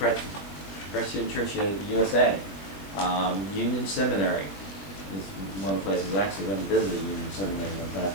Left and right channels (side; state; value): right; late; 21 ms